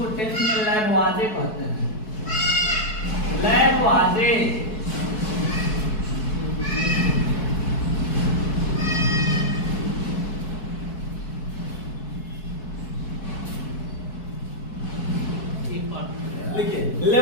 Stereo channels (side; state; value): right; late; 4.6 ms